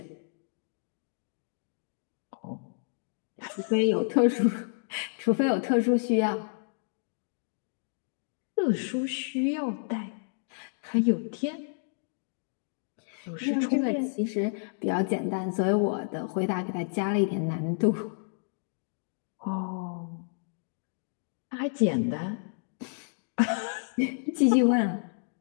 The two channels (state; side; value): silent; right; digital silence